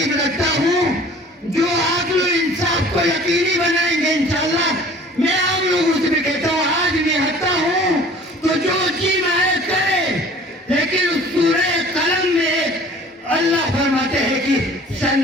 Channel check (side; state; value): both; normal; correlation 0.48